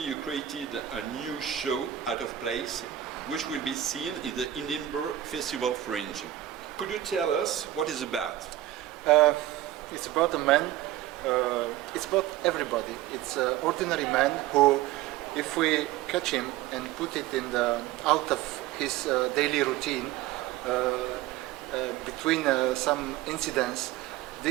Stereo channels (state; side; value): quieter; left; 13.3 dB